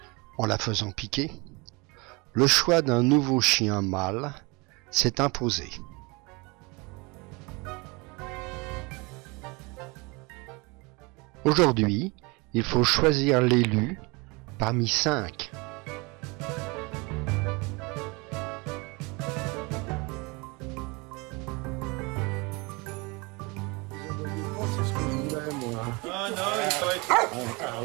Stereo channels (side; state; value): left; quieter; 27.1 dB